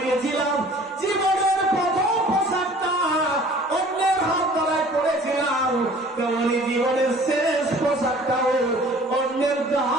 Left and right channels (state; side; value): normal; both; correlation 0.49